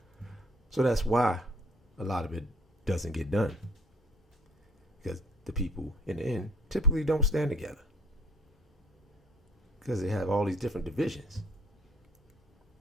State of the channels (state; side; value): normal; both; correlation 0.58